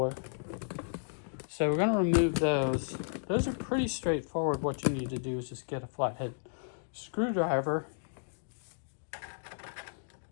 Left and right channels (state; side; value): silent; right; digital silence